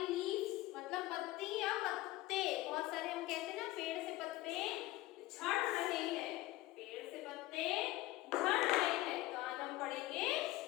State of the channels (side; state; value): right; quieter; 17.9 dB